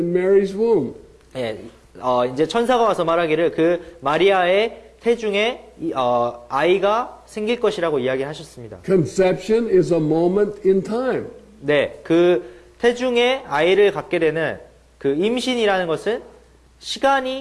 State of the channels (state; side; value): identical; both; correlation 1.00